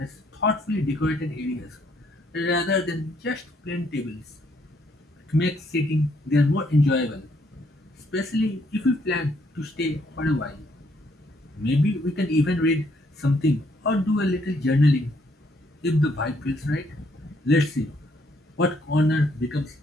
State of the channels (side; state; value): both; normal; correlation 0.70